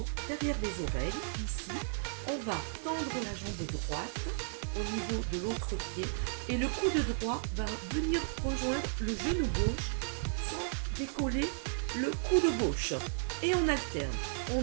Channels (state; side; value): silent; left; 55 dB below the other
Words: derrière les oreilles, ici, on va tendre la jambe droite au niveau de l'autre pied et le coude droit va venir rejoindre le genou gauche sans décoller le coude gauche. Et on alterne,